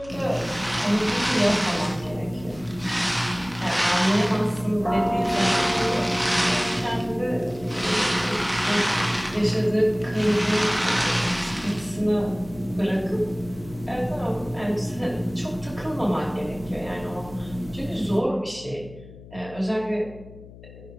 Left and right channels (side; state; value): left; noise; hum, 18 dB below the sound